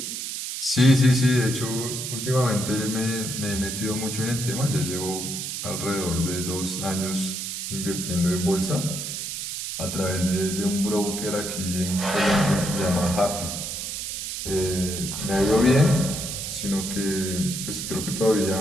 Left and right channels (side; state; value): right; noise; hiss, 5 dB below the sound